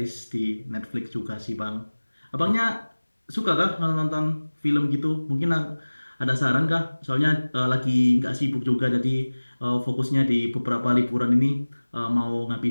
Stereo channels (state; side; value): inverted; both; correlation -1.00